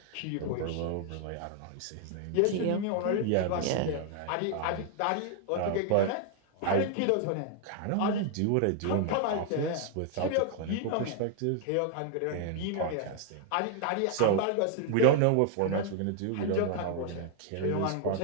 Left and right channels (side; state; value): both; different; correlation 0.00